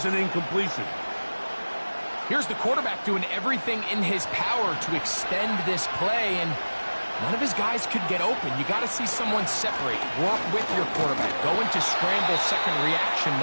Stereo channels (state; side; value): inverted; both; correlation -1.00